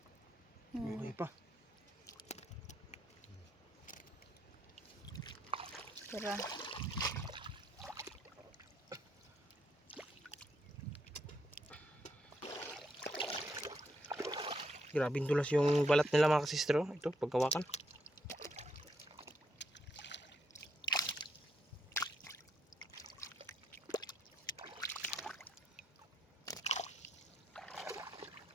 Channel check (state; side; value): normal; both; correlation 0.77